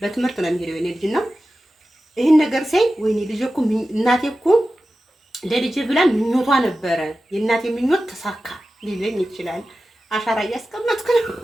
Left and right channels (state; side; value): normal; both; correlation 0.94